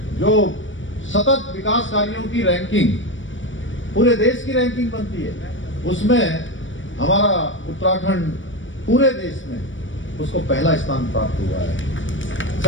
जो सतत विकास कार्यों की रैंकिंग, पूरे देश की रैंकिंग बनती है, उसमें हमारा उत्तराखंड पूरे देश में उसको पहला स्थान प्राप्त हुआ है।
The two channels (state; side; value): late; right; 0.56 ms